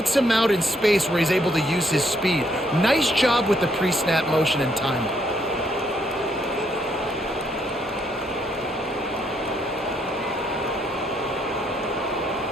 him out in space where he's able to use his speed. Nice job with the pre-snap motion and timing.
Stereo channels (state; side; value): normal; both; correlation 0.72